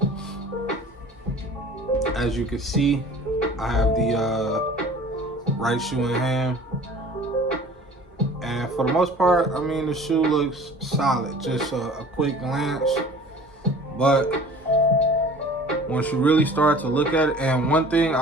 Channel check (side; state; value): both; normal; correlation 0.45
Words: as you can see, I have the right shoe in hand, and for the most part, I mean, the shoe looks solid, just a quick glance. But once you really start to look at it, and one thing